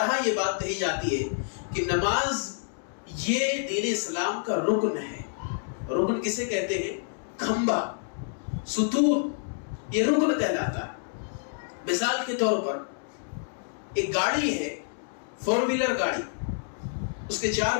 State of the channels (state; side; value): silent; right; digital silence